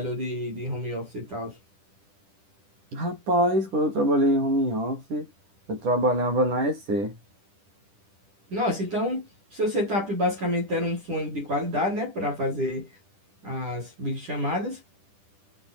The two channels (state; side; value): late; left; 10 ms